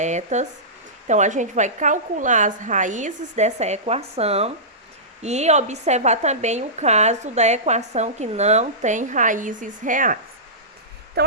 Então, a gente vai calcular as raízes dessa equação e observar também o caso da equação que não tem raízes reais. Então,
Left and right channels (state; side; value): normal; both; correlation -0.20